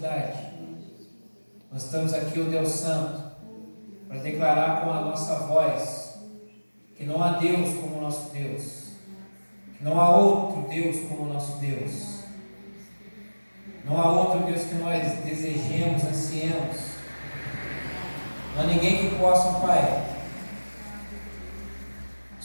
Nós estamos aqui, ó Deus Santo, para declarar com a nossa voz que não há Deus como o nosso Deus, que não há outro Deus como o nosso Deus, não há outro Deus que nós desejemos, ansiemos. Não há ninguém que possa, Pai,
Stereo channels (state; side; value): inverted; both; correlation -1.00